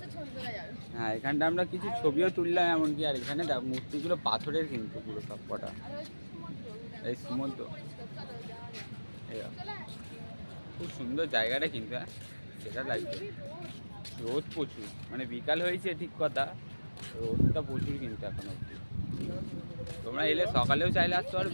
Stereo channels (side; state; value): both; inverted; correlation -1.00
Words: হ্যাঁ এখানটা আমরা কিছু ছবিও তুললাম এমনকি। আর এখানে দেখো মূর্তিগুলো পাথরের কিন্তু পুরো সব কটা, এই সমুদ্র, খুব সুন্দর জায়গাটা কিন্তু, হ্যাঁ সেটা লাগবে। রোদ প্রচুর, মানে বিকাল হয়েছে ঠিক কথা, রোদটা প্রচুর কিন্তু এখন অবধি। তোমরা এলে সকালেও চাইলে আসতে পারো,